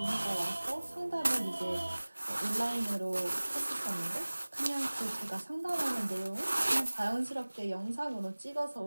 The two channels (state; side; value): inverted; both; correlation -1.00